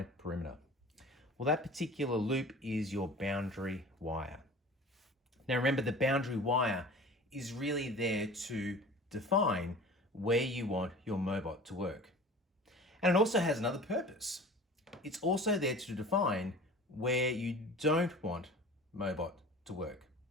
perimeter. Well, that particular loop is your boundary wire. Now remember, the boundary wire is really there to define where you want your Mobot to work. And it also has another purpose. It's also there to define where you don't want Mobot to work.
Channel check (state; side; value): normal; both; correlation 0.41